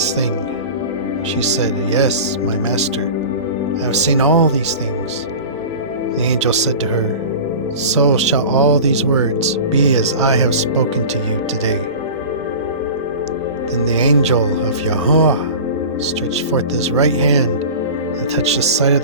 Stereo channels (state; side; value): inverted; both; correlation -0.34